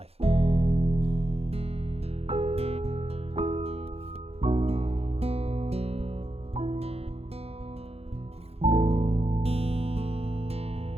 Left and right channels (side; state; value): left; late; 0.29 ms